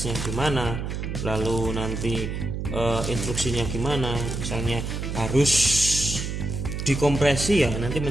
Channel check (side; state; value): right; noise; hum, 4 dB below the sound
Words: gimana, lalu nanti instruksinya gimana, misalnya harus dikompresi ya, nanti